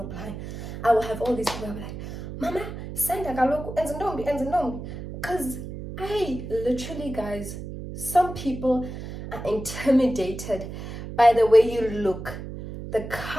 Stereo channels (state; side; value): noise; right; hum, 9 dB below the sound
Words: apply, I will have all these people. I'll be like, Mama, send a galoku, enzinombi. Because I literally, guys, some people are intimidated by the way you look, the